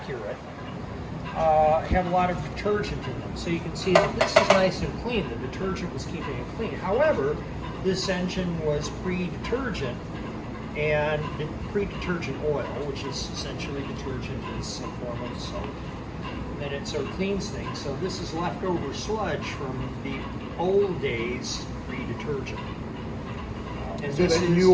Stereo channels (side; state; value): both; identical; correlation 1.00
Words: have a lot of detergent in them. So you can see that this is nice and clean. The detergent was keeping it clean. However, this engine was pre-detergent, and pre-detergent oil, which is essentially detergent, is a form of soap. And it sort of cleans things. So this is leftover sludge from the old days pre-detergent. And so this that new